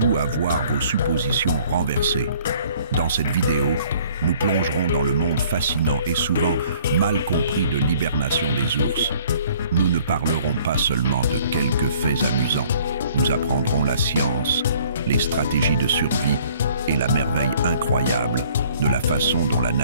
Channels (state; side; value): inverted; both; correlation -0.57